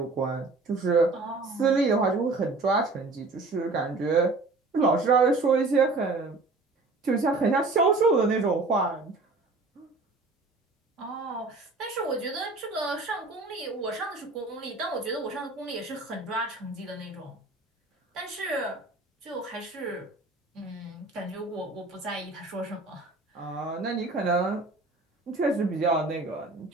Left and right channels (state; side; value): quieter; left; 3.4 dB